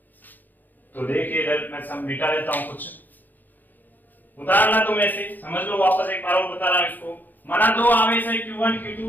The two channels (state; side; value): late; right; 0.085 ms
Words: तो देखिए इधर मैं सब मिटा देता हूं, कुछ उदाहरण तुम ऐसे समझ लो, वापस एक बार और बता रहा हूं इसको। माना दो आवेश है Q1